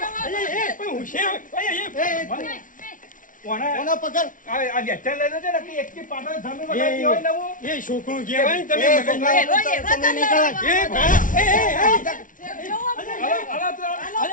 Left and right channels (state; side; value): late; right; 0.38 ms